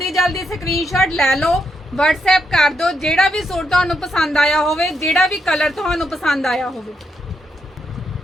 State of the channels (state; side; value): normal; both; correlation 0.80